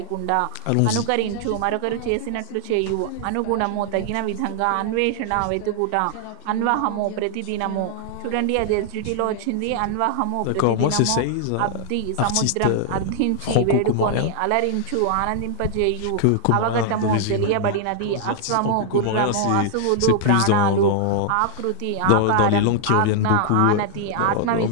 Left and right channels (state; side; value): different; both; correlation 0.00